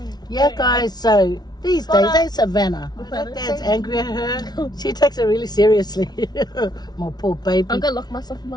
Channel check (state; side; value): late; right; 0.19 ms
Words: Yeah, guys, so These But, days, ain't Savannah. My dad's angry at her. She takes it really seriously. My poor baby. I'm gonna lock myself in